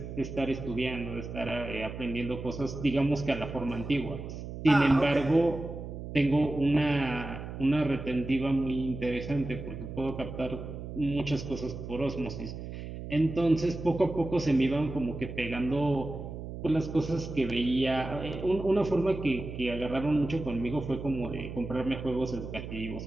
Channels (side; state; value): right; noise; hum, 9 dB below the sound